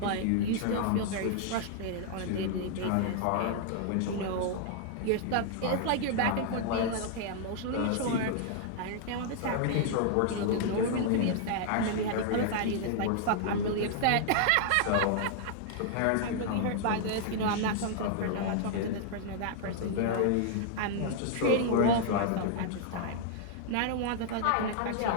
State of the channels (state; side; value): different; both; correlation -0.01